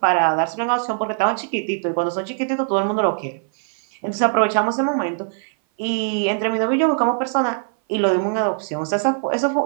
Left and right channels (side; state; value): left; silent; 59 dB below the other